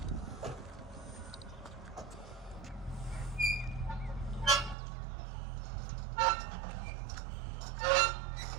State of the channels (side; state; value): left; drops out; at 4.8 s